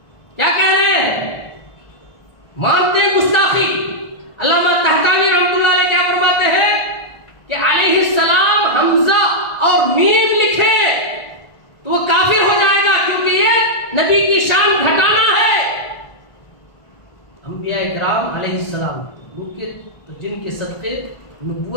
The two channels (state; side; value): late; right; 1.5 ms